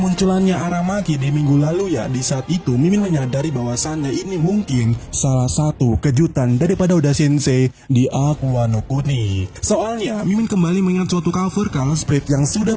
Aramaki di minggu lalu ya, di saat itu Mimin menyadari bahwasannya ini mungkin salah satu kejutan daripada Oda Sensei di Aqua no Kuni. Soalnya, Mimin kembali mengingat suatu cover Color Spread yang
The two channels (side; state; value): both; identical; correlation 1.00